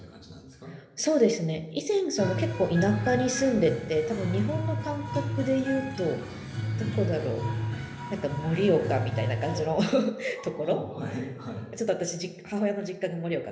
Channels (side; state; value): both; identical; correlation 1.00